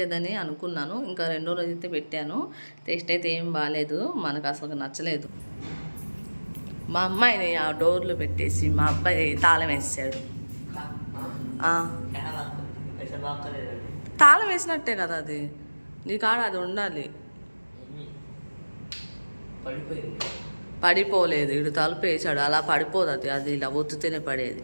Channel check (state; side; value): inverted; both; correlation -1.00